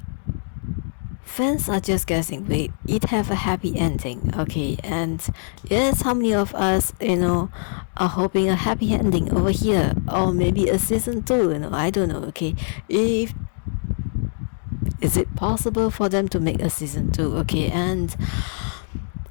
fans are just guessing, wait, it have a happy ending. Okay, and yes, how many of us are hoping a happy ending over here, or maybe a season 2? I don't know. Okay, is it possible for them to make a season 2? Okay, and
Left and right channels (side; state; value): right; silent; 63 dB below the other